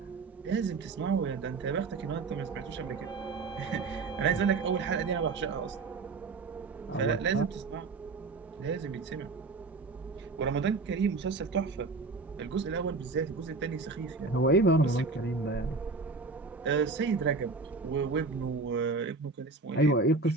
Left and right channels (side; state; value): left; quieter; 3.9 dB